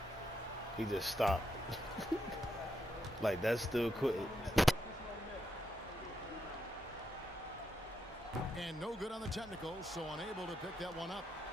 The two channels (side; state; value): both; normal; correlation 0.81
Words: He just stopped. Like that's still quitting. And no good on the technical, so unable to pick that one up.